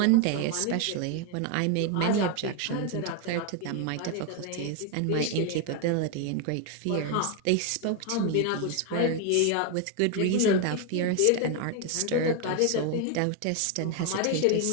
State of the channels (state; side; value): different; both; correlation 0.01